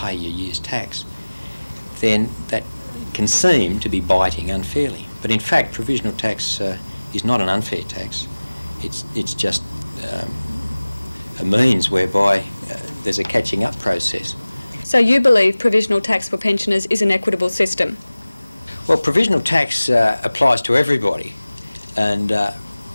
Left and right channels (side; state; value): both; inverted; correlation -0.99